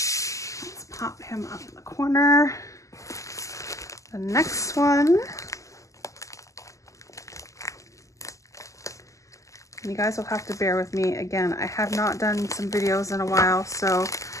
pop him up in the corner. The next one. You guys will have to bear with me. Again, I have not done some videos in a while, so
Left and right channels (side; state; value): right; late; 0.16 ms